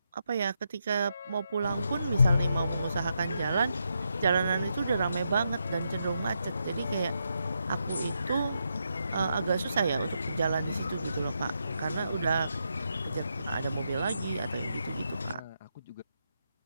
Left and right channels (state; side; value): inverted; both; correlation -0.83